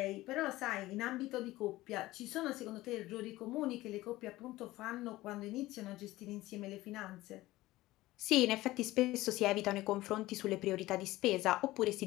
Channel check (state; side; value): quieter; right; 17.7 dB